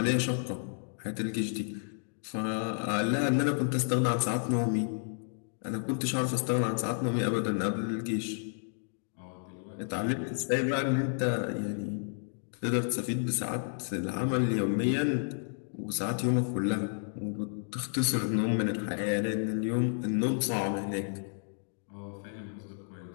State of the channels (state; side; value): silent; right; digital silence